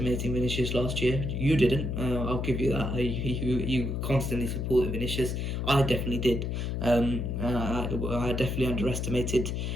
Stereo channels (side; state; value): left; noise; hum, 2 dB below the sound